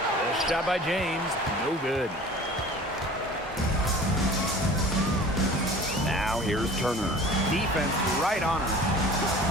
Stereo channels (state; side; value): normal; both; correlation 0.43